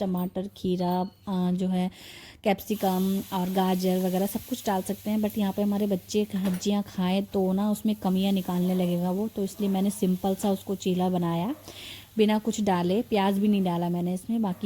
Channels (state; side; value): identical; both; correlation 1.00